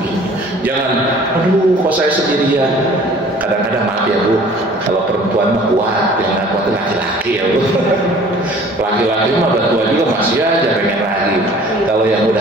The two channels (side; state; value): both; normal; correlation 0.50